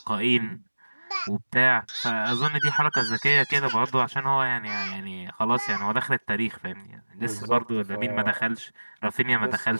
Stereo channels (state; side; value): inverted; both; correlation -1.00